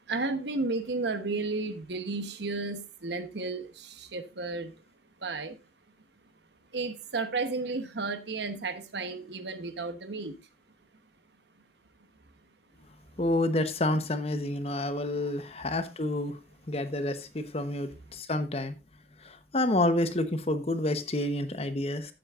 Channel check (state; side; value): normal; both; correlation 0.40